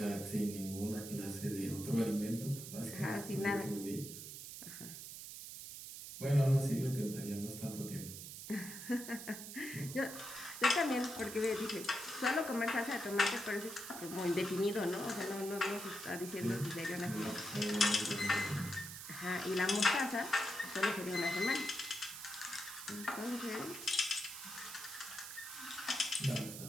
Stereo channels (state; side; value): noise; right; hiss, 10 dB below the sound